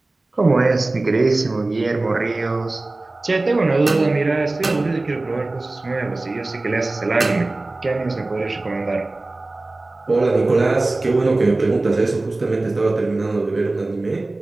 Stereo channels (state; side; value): quieter; left; 3.0 dB